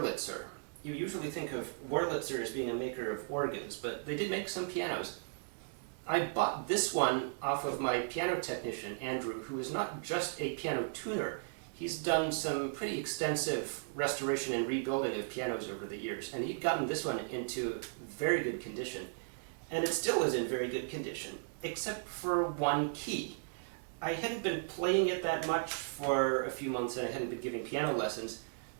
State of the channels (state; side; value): silent; left; digital silence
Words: You usually think of Wurlitzer as being a maker of organs, but they did make some pianos. I bought this one off of my piano technician, Andrew, who is not just a piano tuner. He's done some pretty extensive restoration and rebuilding of pianos over the years, and he'd gotten this one into very good condition. And it still is in very good condition, except for one key. I hadn't been playing it that much for a few months, and I hadn't been giving piano lessons,